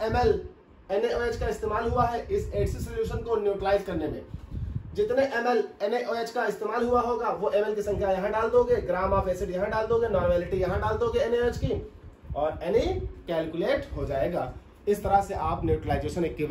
ml NaOH का इस्तेमाल हुआ है इस एसिड सोल्यूशन को न्यूट्रलाइज करने में। जितने ml NaOH का इस्तेमाल हुआ होगा वो ml की संख्या यहां डाल दोगे, ग्राम ऑफ एसिड यहां डाल दोगे, नॉर्मेलिटी यहां डाल दोगे NaOH की और Na कैलकुलेट हो जाएगा। इस तरह से आप न्यूट्रलाइजेशन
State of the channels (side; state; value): both; identical; correlation 1.00